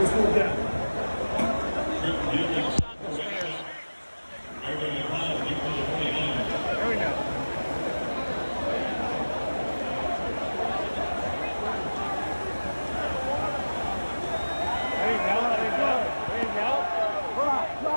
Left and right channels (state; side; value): inverted; both; correlation -1.00